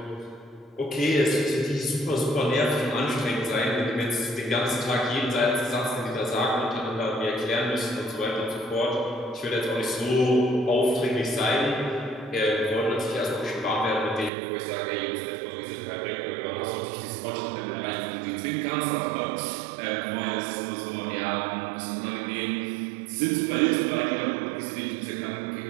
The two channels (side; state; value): left; drops out; at 14.3 s